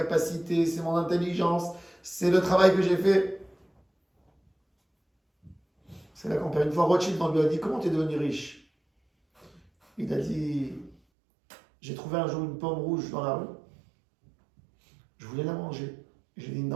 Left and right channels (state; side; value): drops out; left; at 11.0 s